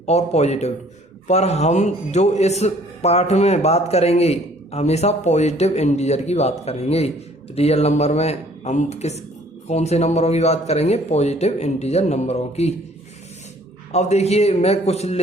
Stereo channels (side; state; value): both; normal; correlation 0.57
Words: और पॉजिटिव, पर हम जो इस पाठ में बात करेंगे हमेशा पॉजिटिव इंटीजर की बात करेंगे। रियल नंबर में हम कौन से नंबरों की बात करेंगे, पॉजिटिव इंटीजर नंबरों की। अब देखिए मैं कुछ